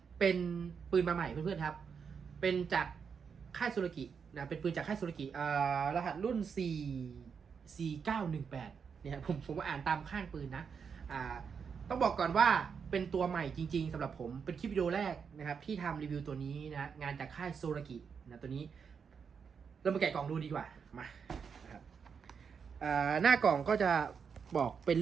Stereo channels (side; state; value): left; quieter; 6.4 dB